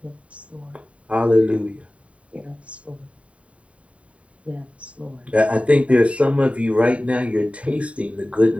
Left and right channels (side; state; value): left; late; 0.064 ms